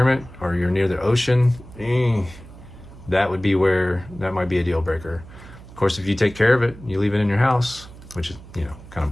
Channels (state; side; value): noise; right; hum, 18 dB below the sound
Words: or you're near the ocean, that would be where that might be a deal breaker. Of course, if you take care of it, you leave it in your house, which is, you know, kind of